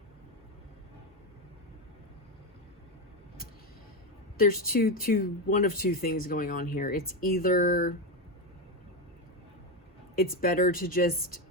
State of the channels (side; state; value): both; normal; correlation 0.11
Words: There's one of two things going on here. It's either it's better to just